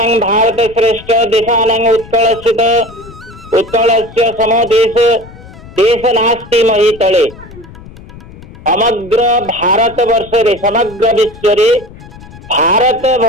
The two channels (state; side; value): noise; left; rumble, 19 dB below the sound